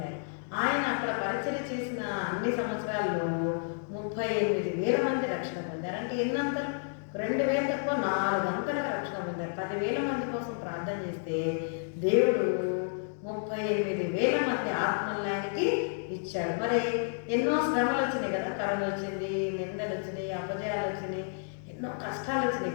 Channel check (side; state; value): right; silent; digital silence